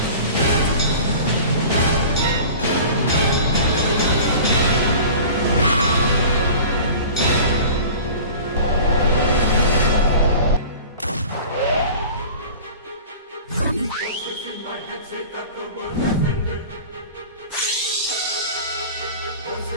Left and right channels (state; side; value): inverted; both; correlation -0.40